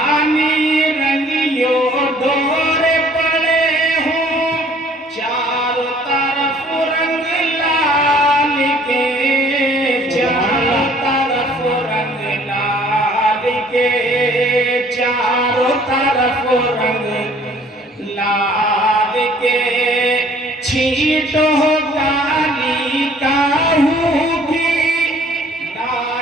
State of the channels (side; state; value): both; normal; correlation 0.56